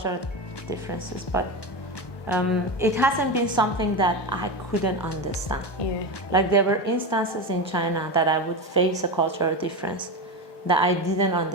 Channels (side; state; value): right; late; 1.1 ms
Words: differences, but it hasn't been something that I couldn't understand. Like there were instances in China that I would face a cultural difference that I didn't